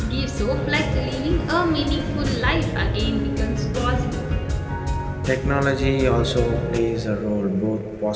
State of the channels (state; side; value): identical; both; correlation 1.00